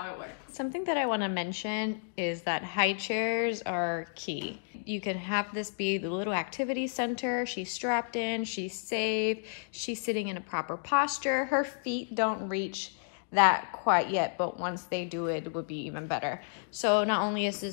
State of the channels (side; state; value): right; silent; digital silence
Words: it works. Something that I want to mention is that high chairs are key. You can have this be the little activity center. She's strapped in, she's safe, she's sitting in a proper posture. Her feet don't reach that quite yet, but once they do, it would be even better. So not only is